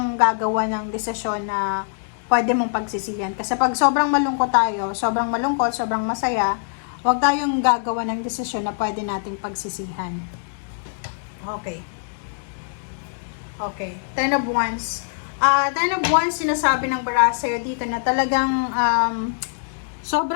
gagawa ng desisyon na pwede mong pagsisihan. Kasi pag sobrang malungkot tayo, sobrang masaya, huwag tayong gagawa ng desisyon na pwede nating pagsisihan. Okay. Okay. 10 of Wands. 10 of Wands, sinasabi ng bara sa'yo dito na talagang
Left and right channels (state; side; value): silent; right; digital silence